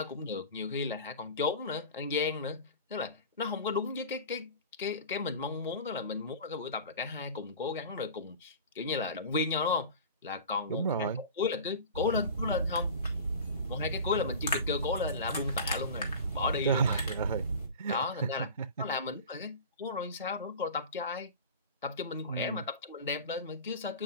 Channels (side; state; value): both; inverted; correlation -0.34